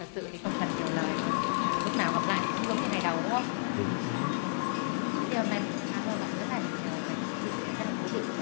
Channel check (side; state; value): right; silent; digital silence